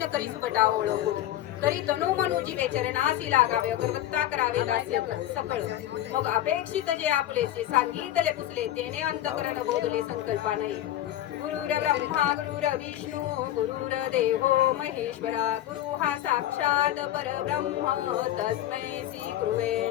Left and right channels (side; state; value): right; quieter; 13.0 dB